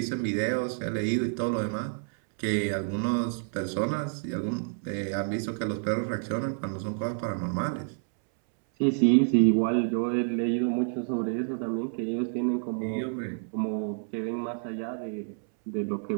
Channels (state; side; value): silent; left; 59 dB below the other